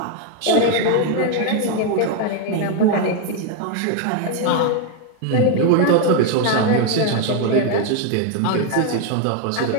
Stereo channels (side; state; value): both; different; correlation 0.01